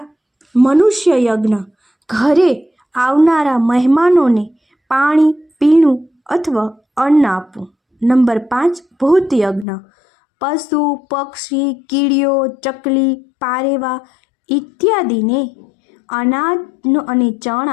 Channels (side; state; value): right; drops out; at 9.7 s